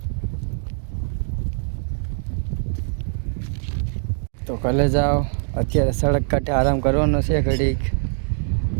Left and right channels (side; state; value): left; silent; digital silence